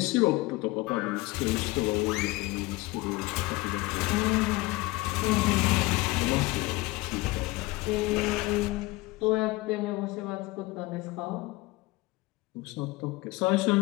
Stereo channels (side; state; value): right; quieter; 21.6 dB